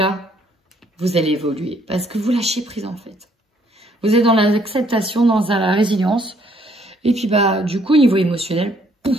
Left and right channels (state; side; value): normal; both; correlation 0.66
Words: vous allez évoluer. Parce que vous lâchez prise en fait. Vous êtes dans l'acceptation, dans la résilience. Et puis, du coup, au niveau émotionnel,